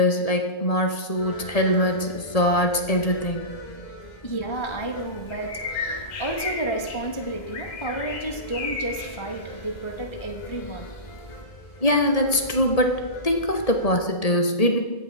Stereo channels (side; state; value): right; late; 1.7 ms